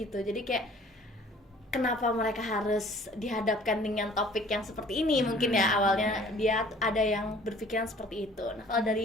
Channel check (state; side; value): normal; both; correlation 0.53